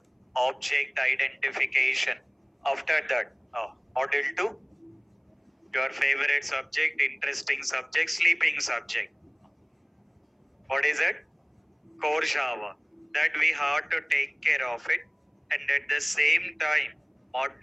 object identification. After that, module 2, your favorite subject, interesting subject, sleeping subject. What is it? Core Java. That we have to take care of it. And at the same time,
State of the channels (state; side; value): identical; both; correlation 1.00